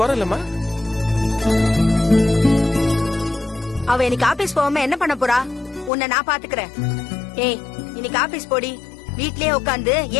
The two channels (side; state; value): right; drops out; at 5.9 s